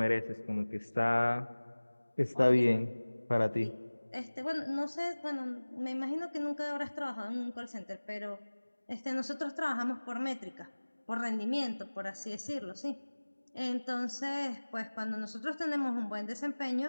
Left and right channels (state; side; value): inverted; both; correlation -1.00